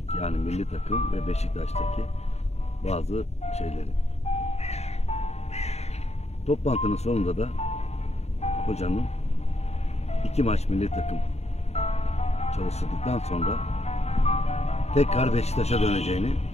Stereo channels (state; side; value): late; right; 0.31 ms